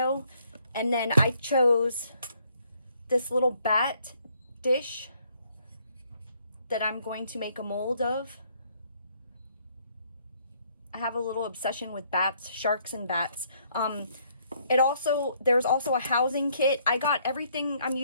And then I chose this little bat dish that I'm going to make a mold of. I have a little obsession with bats, sharks and bats. There's also a housing kit. I got everything I'm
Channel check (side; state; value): both; inverted; correlation -0.67